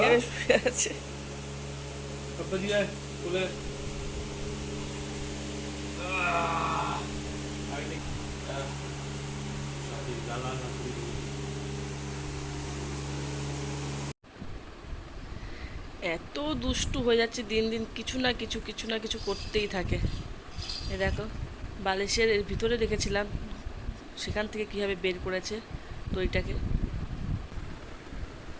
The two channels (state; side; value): identical; both; correlation 1.00